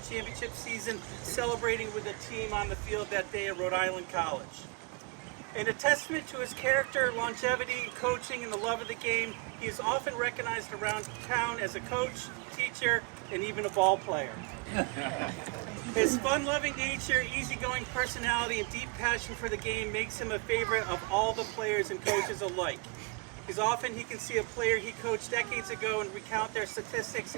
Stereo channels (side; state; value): left; quieter; 30.7 dB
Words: championship season, celebrating with the team on the field that day at Rhode Island College. In a testament to his character, longevity, coaching, and the love of the game, he is often recognized around town as a coach, teacher, and even a ball player. His fun-loving nature, easygoing personality, and deep passion for the game makes him a favorite of all the players and coaches alike. Because often he can see a player he coached decades ago and recount their statistics